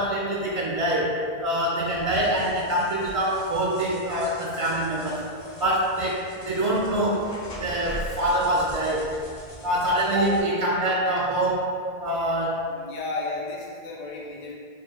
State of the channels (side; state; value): right; late; 1.5 ms